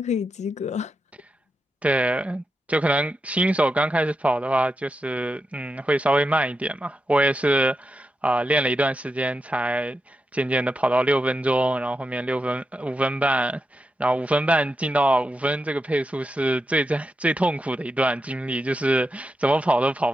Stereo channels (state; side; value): normal; both; correlation 0.87